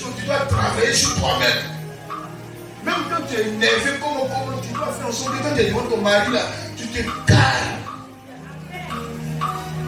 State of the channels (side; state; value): both; identical; correlation 1.00